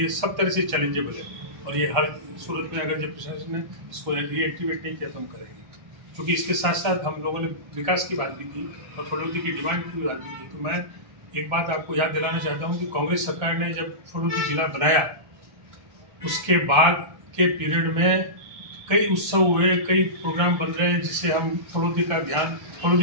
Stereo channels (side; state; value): left; late; 1.3 ms